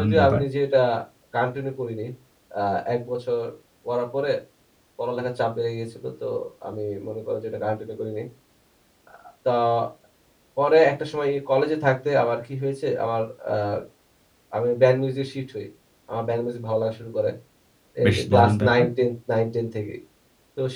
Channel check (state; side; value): identical; both; correlation 1.00